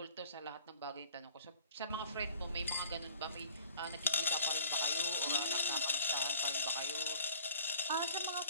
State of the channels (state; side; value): inverted; both; correlation -0.51